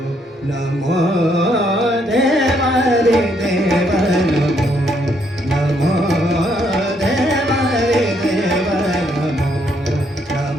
नमो देवा रे देवा नमो नमो देवा रे देवा नमो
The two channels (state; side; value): normal; both; correlation 0.72